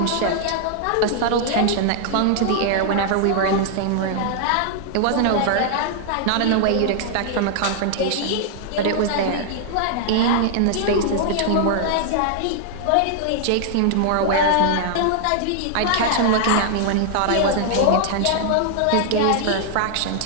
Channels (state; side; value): different; both; correlation -0.01